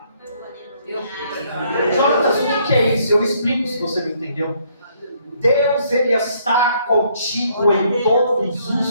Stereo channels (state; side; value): inverted; both; correlation -0.68